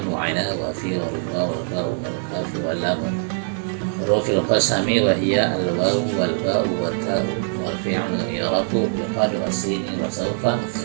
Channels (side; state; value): left; silent; digital silence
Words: wa ana wa fi wa ruba wal ba wal kaf wal lam. Hurufil qasami wa hiya al waw wal ba wa ta wal fi'lu yarafu bi qad wa sin wa sawfa